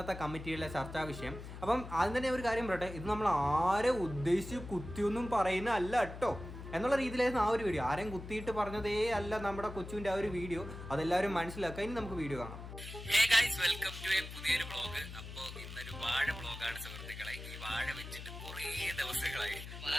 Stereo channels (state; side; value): noise; left; hum, 11 dB below the sound